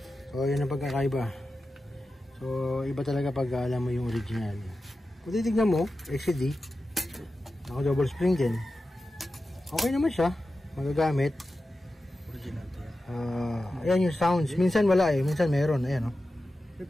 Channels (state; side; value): normal; both; correlation 0.93